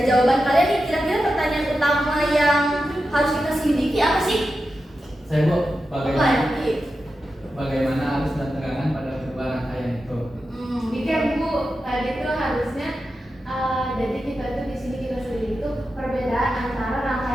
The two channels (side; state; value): both; normal; correlation 0.90